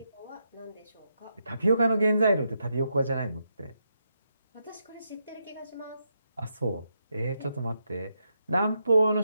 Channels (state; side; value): inverted; both; correlation -0.82